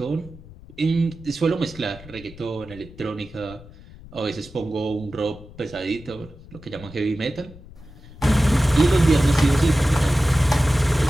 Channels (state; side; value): noise; left; rumble, 19 dB below the sound